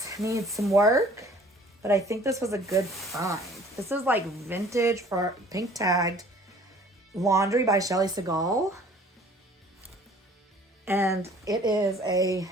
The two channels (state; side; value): normal; both; correlation 0.52